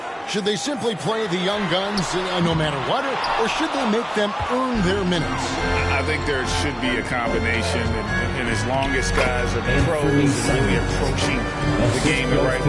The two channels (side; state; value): both; identical; correlation 1.00